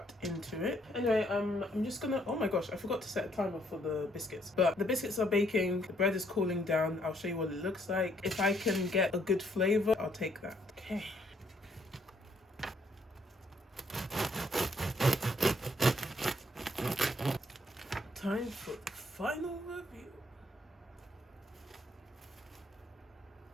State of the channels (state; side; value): normal; both; correlation 0.69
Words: into it. Anyway, I'm just going to, oh my gosh, I forgot to set a timer for the biscuits. But the biscuits are baking, the bread is cooling down. I'll show you what it looks like. If I can get a good flavor, I'll take that. Okay. Time for the final review.